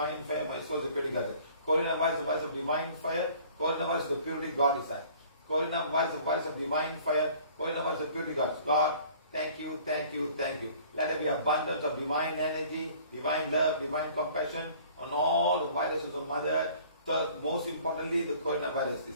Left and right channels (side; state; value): both; inverted; correlation -0.52